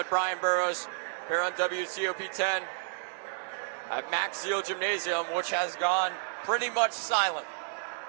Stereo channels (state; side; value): silent; left; digital silence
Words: Brian Burrows here on WCOP 10 at Max Seal Gymnasium, which has gone pretty much silent.